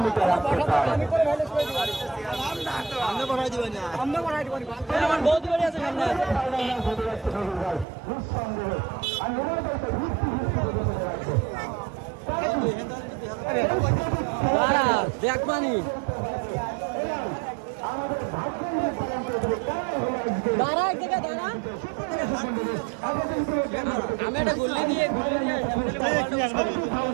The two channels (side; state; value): left; drops out; at 7.9 s